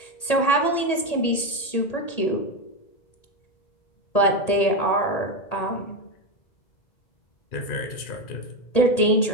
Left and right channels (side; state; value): right; late; 1.8 ms